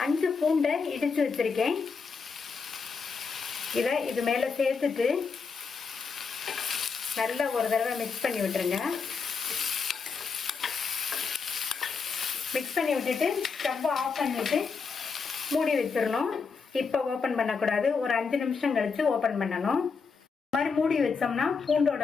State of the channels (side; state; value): right; quieter; 5.2 dB